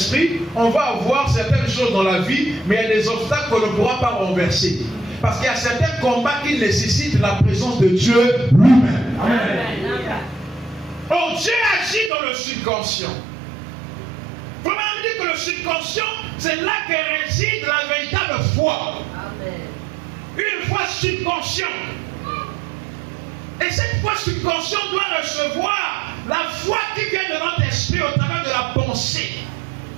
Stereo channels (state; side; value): drops out; left; at 12.1 s